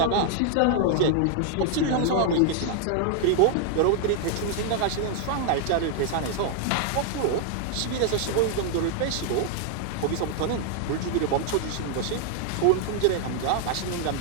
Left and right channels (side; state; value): both; different; correlation 0.00